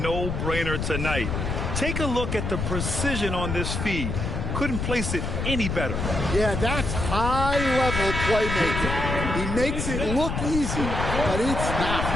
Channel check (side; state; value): left; noise; rumble, 2 dB below the sound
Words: tonight. Take a look at the precision on this feed. Couldn't place it any better. Yeah, that's high-level playmaking. He makes it look easy, but it's not.